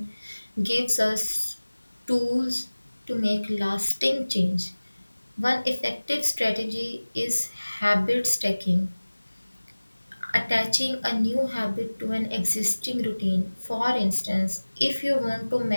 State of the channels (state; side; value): inverted; both; correlation -1.00